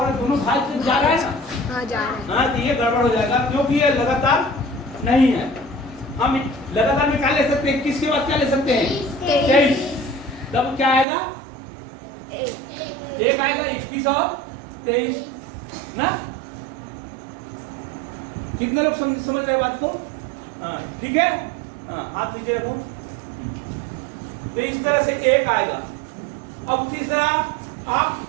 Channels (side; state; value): left; drops out; at 11.1 s